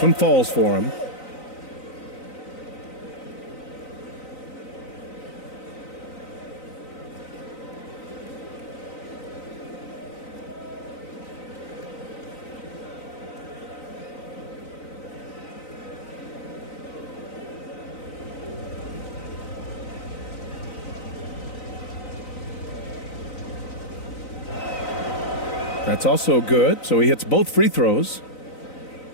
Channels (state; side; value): late; right; 3.9 ms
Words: one falls for him. That's also good, so he hits both free throws.